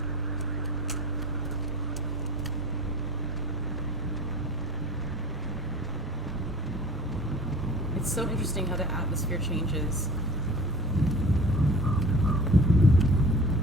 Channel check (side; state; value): both; normal; correlation 0.40